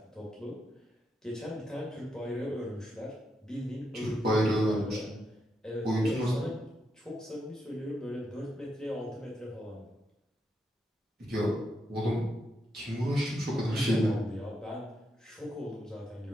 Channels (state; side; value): normal; both; correlation 0.82